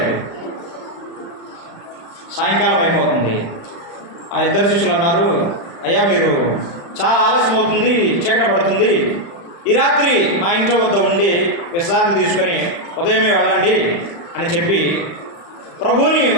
సాయంకాలం అయిపోతుంది. ఆ 2 శిష్యులు అన్నారు, అయ్యా మీరు చాలా ఆలస్యం అవుతుంది, చీకటి పడుతుంది, ఈ రాత్రి మా ఇంట్లో వద్ద ఉండి విశ్రాంతి తీసుకొని ఉదయమే వెళ్ళండి అని చెప్పి ప్రభువుని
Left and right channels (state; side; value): late; right; 35 ms